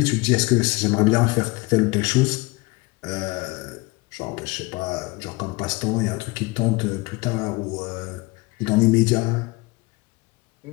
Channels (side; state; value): right; quieter; 23.5 dB